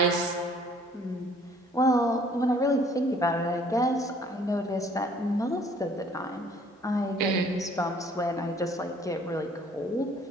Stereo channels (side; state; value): both; normal; correlation 0.58